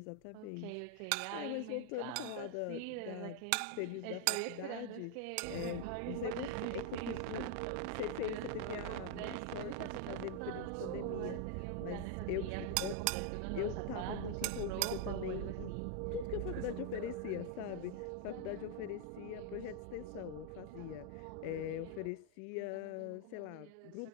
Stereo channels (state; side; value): different; both; correlation 0.00